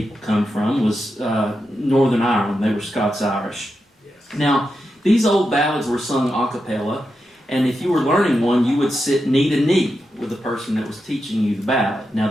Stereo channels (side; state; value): both; normal; correlation 0.88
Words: come from, was Northern Ireland. They were Scots-Irish. Now, these old ballads were sung a cappella, and if you were learning one, you would sit knee to knee with the person that was teaching you the ballad. Now,